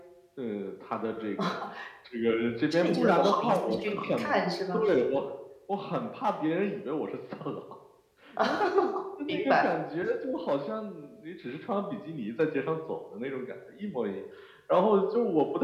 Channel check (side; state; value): both; identical; correlation 1.00